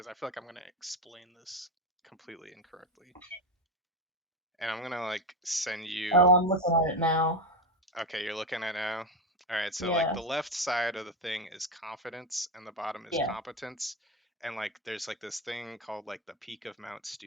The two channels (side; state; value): both; normal; correlation 0.14